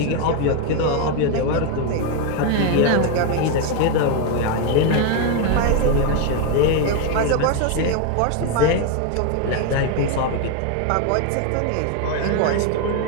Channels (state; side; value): different; both; correlation 0.01